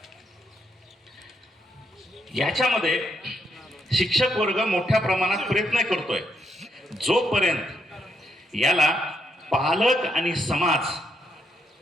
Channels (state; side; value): normal; both; correlation 0.77